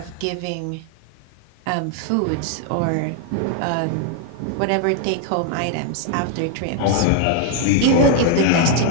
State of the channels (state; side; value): different; both; correlation 0.01